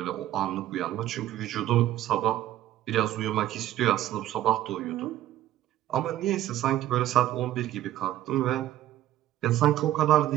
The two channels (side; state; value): left; quieter; 13.3 dB